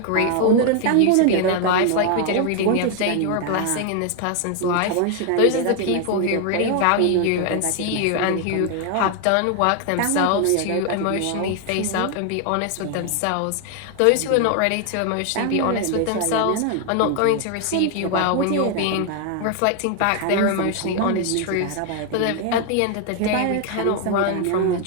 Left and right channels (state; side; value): different; both; correlation 0.00